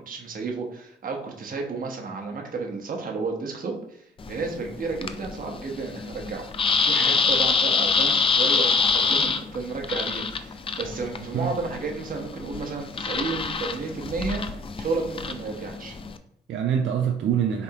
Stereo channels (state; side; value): normal; both; correlation 0.53